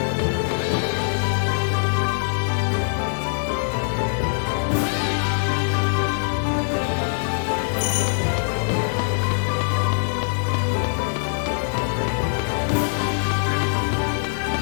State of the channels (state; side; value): silent; right; digital silence